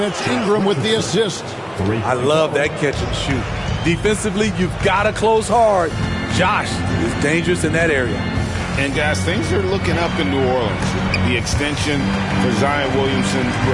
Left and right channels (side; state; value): both; identical; correlation 1.00